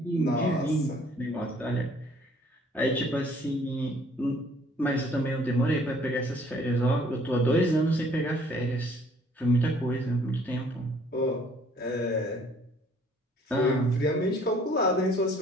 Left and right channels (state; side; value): normal; both; correlation 0.59